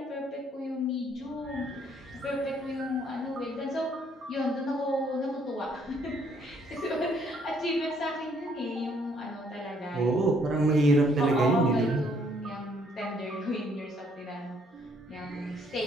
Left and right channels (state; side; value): normal; both; correlation 0.66